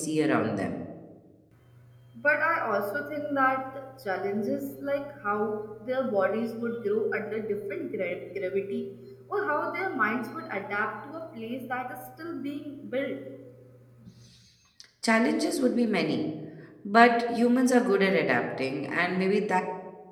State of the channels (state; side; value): identical; both; correlation 1.00